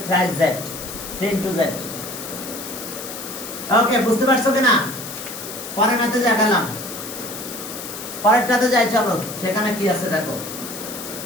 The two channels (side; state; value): left; noise; hiss, 9 dB below the sound